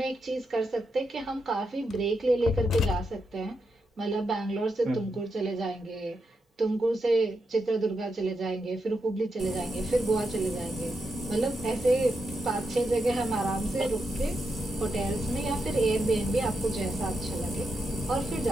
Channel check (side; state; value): both; normal; correlation 0.84